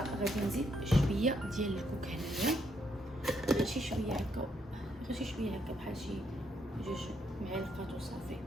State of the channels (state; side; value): normal; both; correlation 0.75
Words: نزيد شويه ديال الكوك هنايا، غير شي شويه هكا، غير شي شويه هكا بحال شي 2 معالق وصافي،